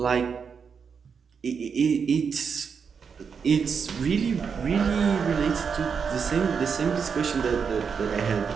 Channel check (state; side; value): quieter; left; 6.2 dB